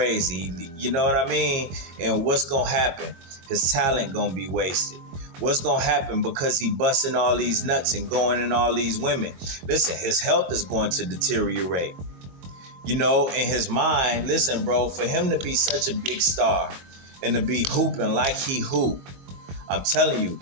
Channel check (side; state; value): left; late; 22 ms